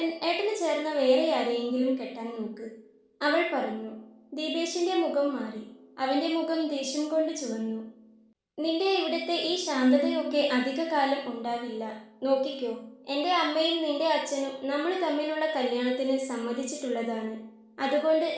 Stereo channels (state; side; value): identical; both; correlation 1.00